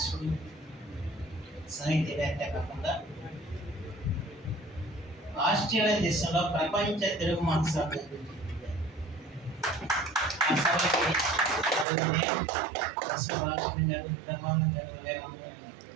సాహిత్యవేత్త కాకుండా ఆస్ట్రేలియా దేశంలో ప్రపంచ తెలుగు మహాసభ గారు, బ్రహ్మానందం గారు,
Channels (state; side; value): drops out; left; at 11.9 s